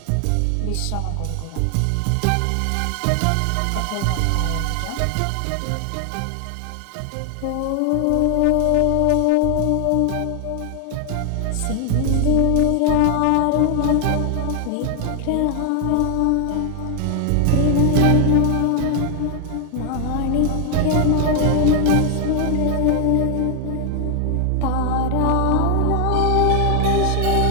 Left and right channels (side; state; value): both; different; correlation 0.00